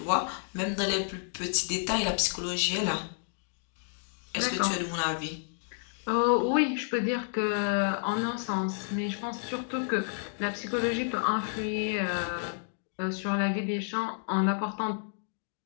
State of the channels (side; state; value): right; silent; digital silence